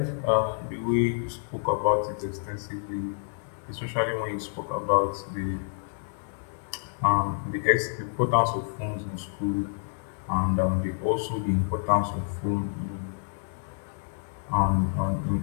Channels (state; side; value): silent; right; digital silence